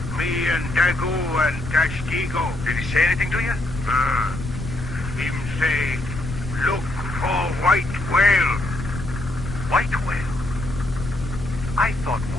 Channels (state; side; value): noise; left; rumble, 8 dB below the sound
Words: Me and Dago and Castigo. Did he say anything to you? Him say, look for white whale. White whale? I thought